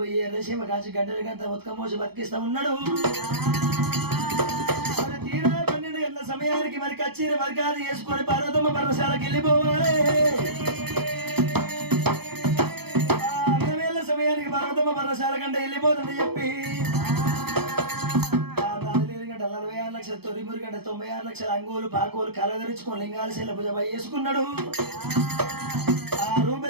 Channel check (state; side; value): late; left; 0.97 ms